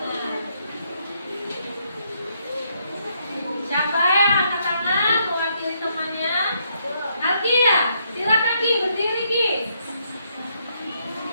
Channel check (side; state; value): both; inverted; correlation -0.74